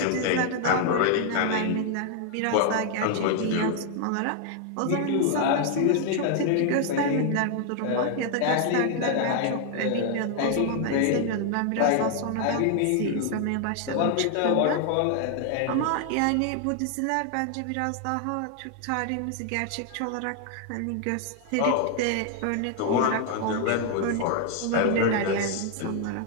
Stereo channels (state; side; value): different; both; correlation 0.00